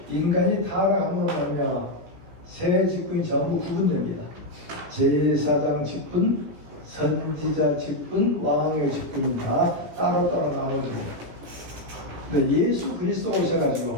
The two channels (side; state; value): left; late; 17 ms